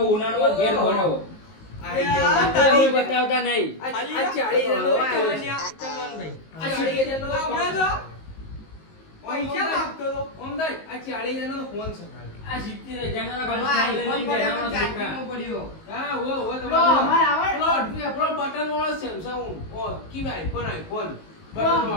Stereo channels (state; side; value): late; right; 19 ms